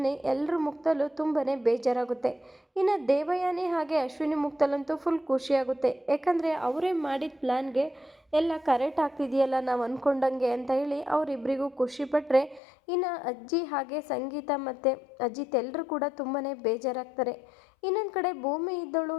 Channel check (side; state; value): right; drops out; at 12.6 s